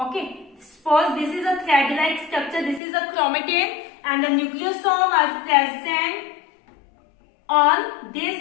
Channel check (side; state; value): right; drops out; at 2.8 s